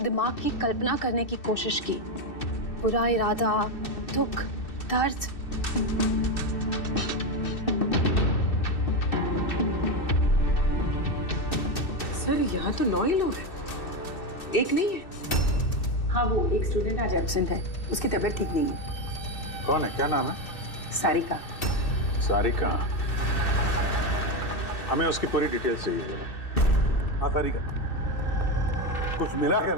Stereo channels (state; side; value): late; right; 2.6 ms